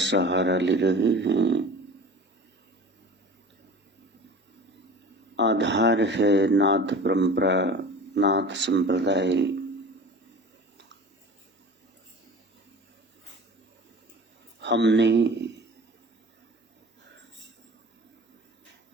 सहारा ले रहे हैं। आधार है नाथ परंपरा, नाथ संप्रदाय। हमने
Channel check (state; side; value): normal; both; correlation 0.39